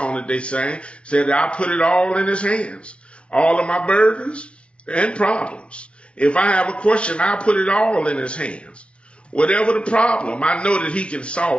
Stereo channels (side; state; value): right; late; 0.059 ms